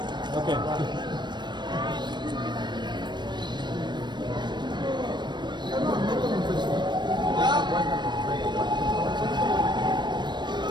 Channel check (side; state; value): left; late; 0.22 ms